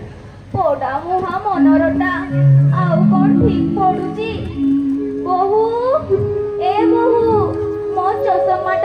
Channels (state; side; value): identical; both; correlation 1.00